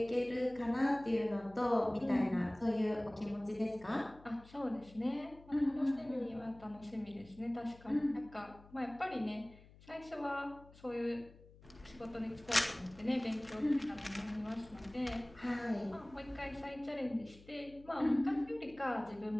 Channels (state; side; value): noise; left; hum, 22 dB below the sound